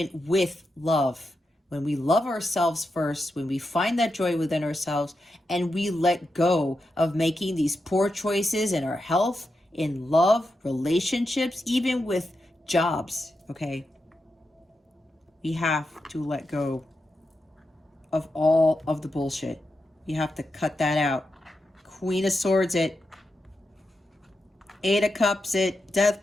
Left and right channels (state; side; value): normal; both; correlation 0.87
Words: with love. When we love ourselves first, when we find that joy within ourselves, and we let go of making these poor choices in our health, in love, relationships, even with jobs, okay? We have to let go of all of the bullshit. You have to cut that out. Queen of Swords it. Eight of Cups it. Death